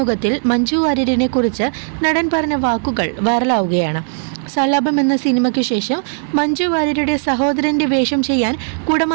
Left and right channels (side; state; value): left; silent; digital silence